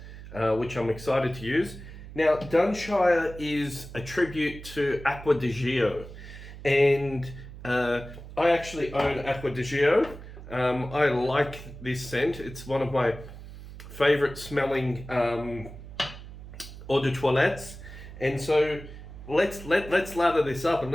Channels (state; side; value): noise; right; hum, 14 dB below the sound